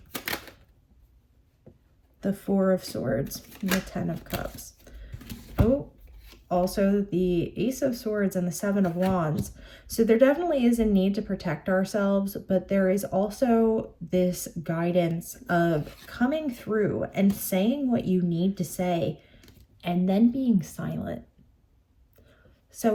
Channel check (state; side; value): identical; both; correlation 1.00